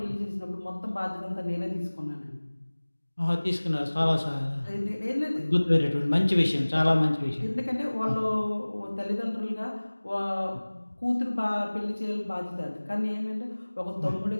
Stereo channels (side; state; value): both; inverted; correlation -1.00